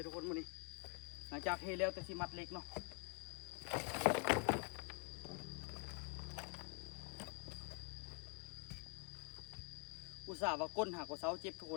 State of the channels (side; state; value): right; quieter; 36.3 dB